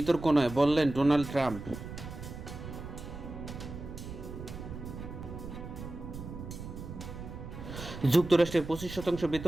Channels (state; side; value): noise; right; rumble, 10 dB below the sound